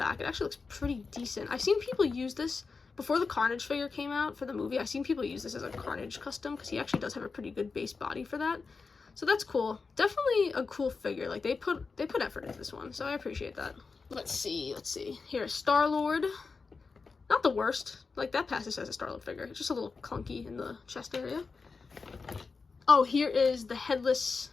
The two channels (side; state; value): right; quieter; 4.6 dB